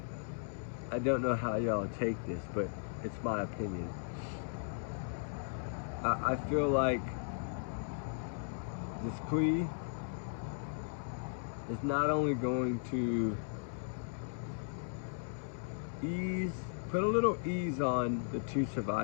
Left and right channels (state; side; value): silent; right; digital silence